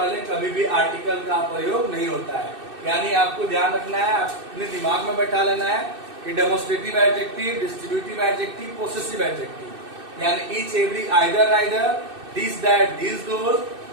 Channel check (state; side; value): late; left; 2.6 ms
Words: कभी भी आर्टिकल का प्रयोग नहीं होता है। यानी आपको ध्यान रखना है, अपने दिमाग में बैठा लेना है कि demonstrative adjective, distributive adjective, possessive adjective, यानी each every either neither, this that this those,